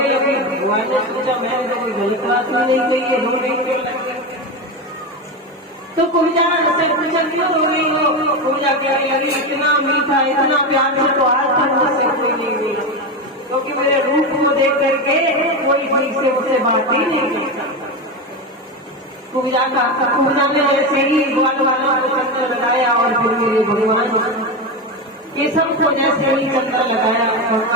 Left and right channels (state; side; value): normal; both; correlation 0.17